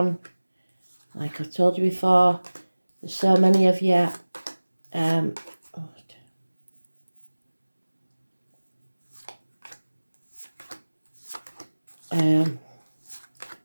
Like I've told you before, there's so many of you.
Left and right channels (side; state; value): both; inverted; correlation -1.00